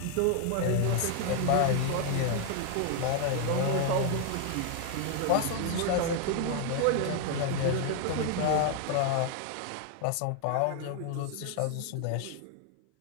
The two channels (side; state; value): both; different; correlation 0.00